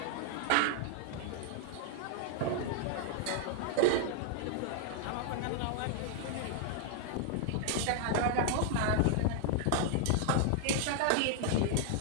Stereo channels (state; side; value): different; both; correlation 0.00